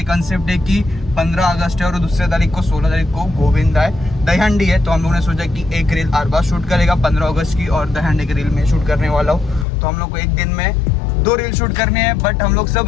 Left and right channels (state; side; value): drops out; right; at 9.7 s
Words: कंसेप्ट है कि 15 अगस्त है और दूसरे तारीख को 16 तारीख को गोविंदा है, दहीहंडी है, तो हम लोग ने सोचा कि एक रील अरबा शूट करेगा 15 अगस्त की और दहीहंडी की रील में शूट करने वाला हूँ। तो हम लोग को एक दिन में 2 रील शूट करने हैं, बट हम लोग